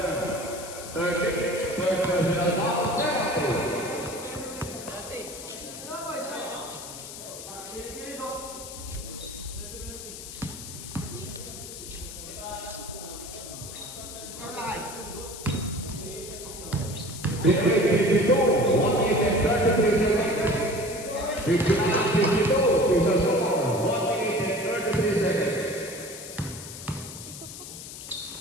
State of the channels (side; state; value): left; noise; hiss, 11 dB below the sound